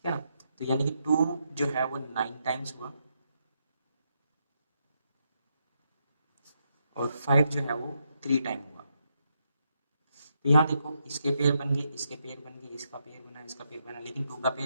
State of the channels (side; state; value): both; inverted; correlation -0.81